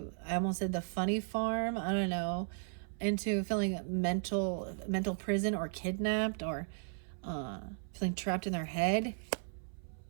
almost said the funny farm. I don't know, into feeling mental prison or kidnapped or feeling trapped in their head.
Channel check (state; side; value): silent; left; 54 dB below the other